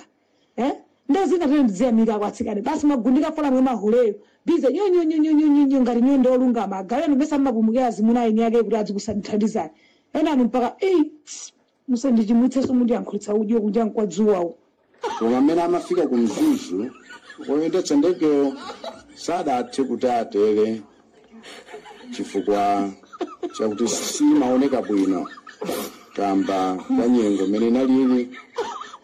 ndo zina tene mudziyamika kwatsikane basi magundika fola mwe mahuleyo bize nyonyo ngati nyondo olungama agaleno mesa mapumukira zimuna ine yake kuti adzikusandithandizani ena mpaka musandichimwitseso mundi yankhulitsa udyo kunja kwa dzuwawo koma amene amafika ku mzuzu oyendetsa ndegeyo sadathe kuti atere chifukwa chakuti simaoneka bwino kamba ka nyengo imene inalili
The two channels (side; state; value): both; identical; correlation 1.00